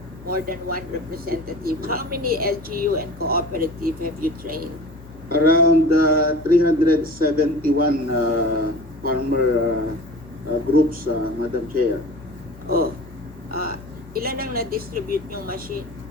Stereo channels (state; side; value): normal; both; correlation 0.38